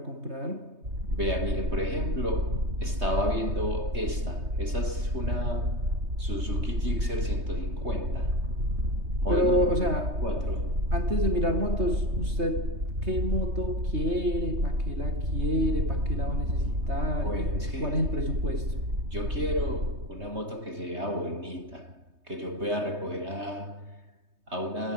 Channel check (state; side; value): late; left; 3.2 ms